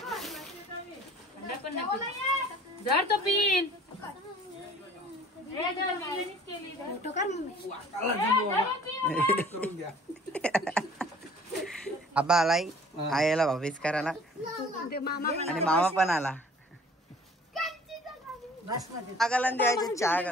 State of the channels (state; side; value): normal; both; correlation 0.51